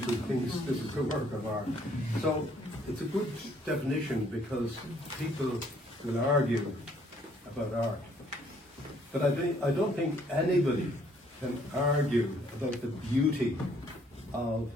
who thinks this is a work of art. So it's a good definition, because people will argue about art. But I don't think anybody can argue about the beauty of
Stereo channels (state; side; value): normal; both; correlation 0.64